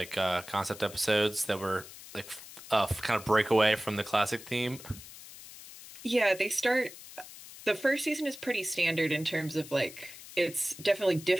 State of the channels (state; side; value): noise; left; hiss, 16 dB below the sound